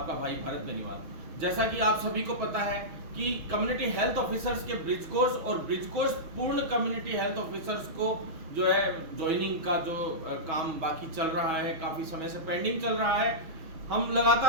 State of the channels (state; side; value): late; left; 6.2 ms